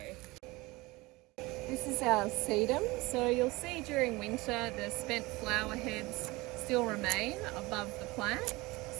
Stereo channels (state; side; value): quieter; left; 22.1 dB